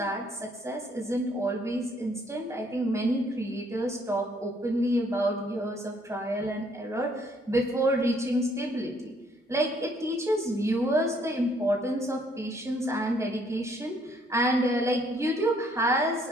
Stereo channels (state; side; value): normal; both; correlation 0.65